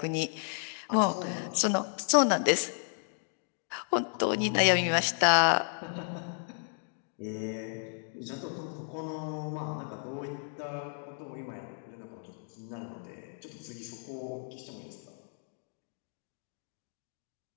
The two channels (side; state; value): right; silent; 56 dB below the other